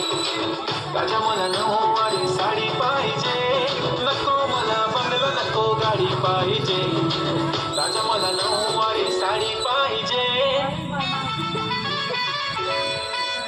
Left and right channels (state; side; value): identical; both; correlation 1.00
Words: राजा मला नऊवारी साडी पाहिजे नको मला बंगला नको गाडी पाहिजे राजा मला नऊवारी साडी पाहिजे